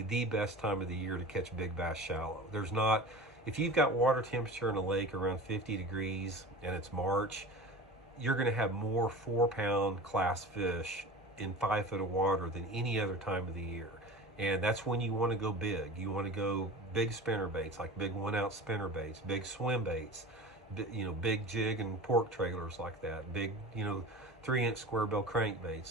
the best time of the year to catch big bass shallow. There's not, if you've got water temperature in a lake around 50 degrees and it's March, you're going to have more 4-pound class fish in 5 foot of water than any other time of the year. And that's when you want to go big. You want to go big spinner baits, like big 1-ounce spinner baits, big swim baits, big jig and pork trailers like that, big, 3-inch square bill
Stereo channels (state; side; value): normal; both; correlation 0.35